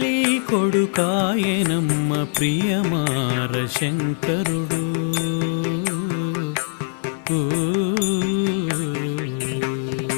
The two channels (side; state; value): right; silent; digital silence